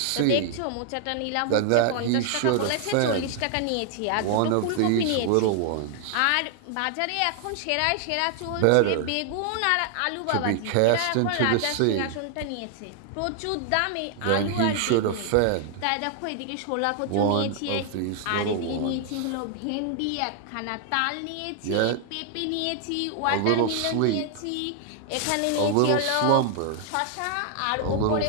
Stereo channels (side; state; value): both; different; correlation 0.00